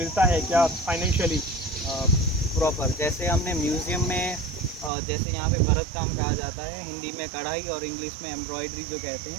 है क्या फाइनेंशियली? प्रॉपर जैसे हमने म्यूज़ियम में जैसे यहाँ पे भरत काम कहा जाता है, हिंदी में कढ़ाई और इंग्लिश में एम्ब्रॉयडरी जो कहते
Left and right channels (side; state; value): left; drops out; at 4.9 s